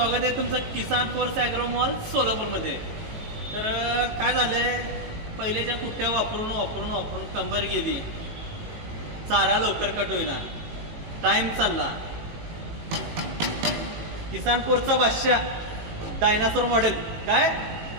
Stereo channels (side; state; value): left; late; 18 ms